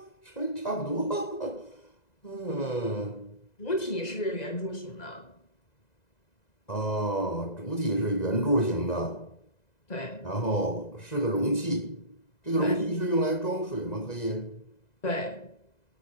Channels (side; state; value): right; late; 2.0 ms